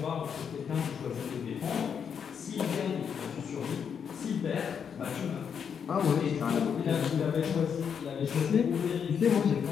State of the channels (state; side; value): quieter; right; 7.3 dB